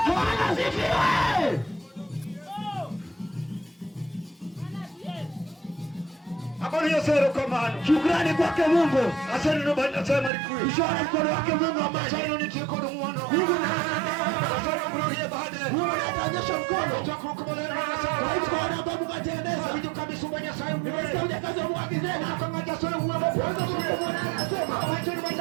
Bwana asifiwe. Habari ya sero kamano. Shukrani kwake Mungu. Asante no bana sema rikui. Ishara mkono wake Mungu ambaye Sasa ni tiko ndo mwana. Mungu na Sasa mrudia baada. Mungu anaonyesha mkono. Tutakukubaliana na Kwa hivyo sasa. kwa sababu katengeneza. Vitu kabisa mwenye sayo. Nimesikia kazi ya Mungu akisema. Kama tasoro uwe. Kwanza Mungu anasema. Wacha ni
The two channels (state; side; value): drops out; left; at 10.3 s